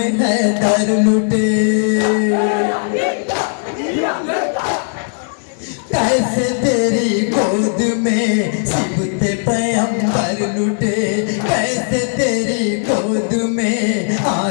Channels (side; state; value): right; silent; digital silence